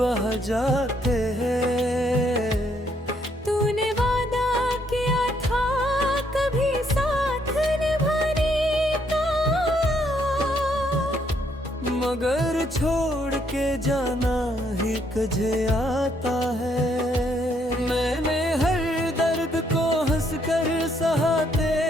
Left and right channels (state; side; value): normal; both; correlation 0.71